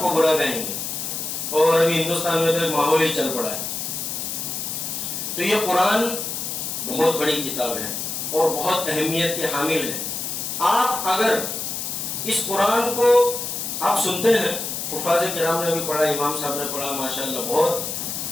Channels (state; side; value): noise; left; hiss, 4 dB below the sound